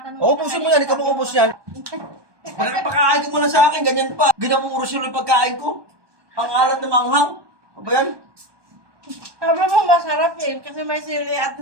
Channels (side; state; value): left; late; 1.2 ms